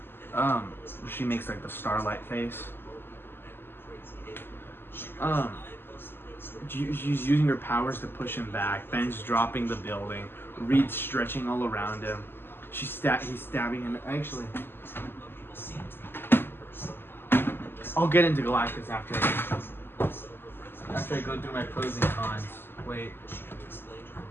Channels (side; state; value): right; late; 0.10 ms